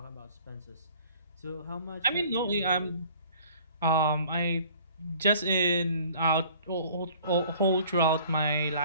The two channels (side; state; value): both; inverted; correlation -0.52